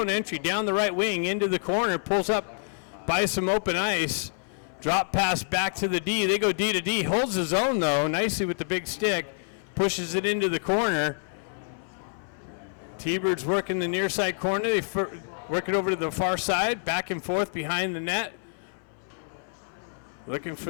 entry down the right wing into the corner. Pulls up by some open ice. Drop pass back to the D. They go D to D. Holds the zone though nicely with the big stick. Pushes it into the corner. T-Birds working the near side corner. They work it over to the far side, back and forth behind the net. Looking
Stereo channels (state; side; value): silent; right; 58 dB below the other